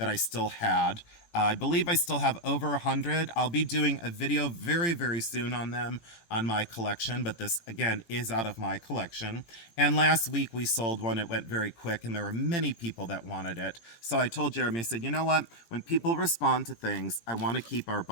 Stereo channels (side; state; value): right; late; 18 ms